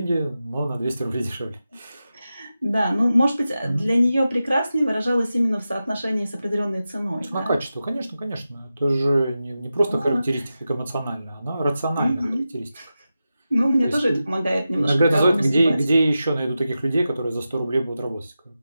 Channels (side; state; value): both; inverted; correlation -0.92